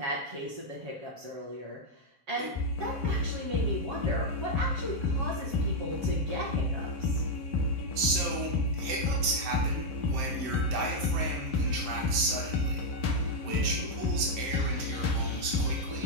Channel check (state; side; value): late; left; 7.6 ms